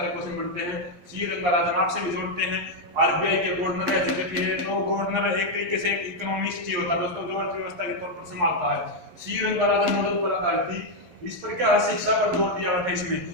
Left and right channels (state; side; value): late; left; 11 ms